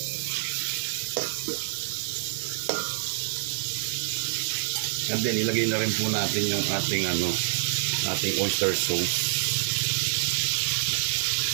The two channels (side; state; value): left; silent; digital silence